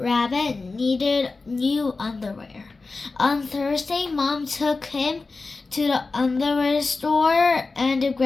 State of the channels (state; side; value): quieter; right; 3.8 dB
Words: needed new underwear. On Thursday, Mom took him to the underwear store and